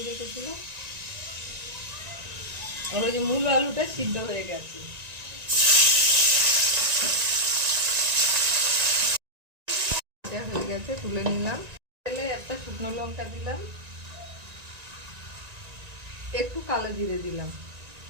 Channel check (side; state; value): left; late; 1.9 ms